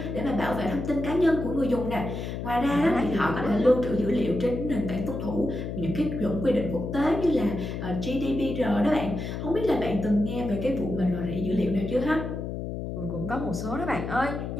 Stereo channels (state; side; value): noise; left; hum, 5 dB below the sound